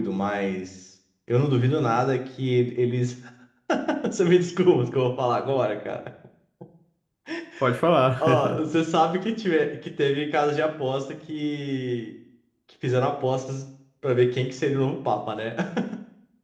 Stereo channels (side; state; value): both; identical; correlation 1.00